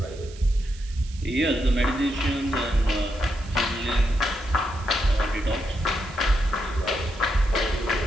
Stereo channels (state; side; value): noise; right; hiss, 21 dB below the sound